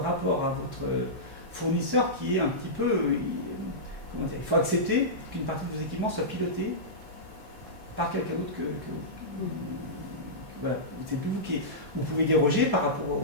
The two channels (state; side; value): normal; both; correlation -0.16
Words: à votre fournisseur qui est un petit peu... comment dire, il faut accepter qu'une partie de vos équipements soit pilotée par quelqu'un d'autre que voilà, c'est plus vous qui... Vous pouvez déroger par rapport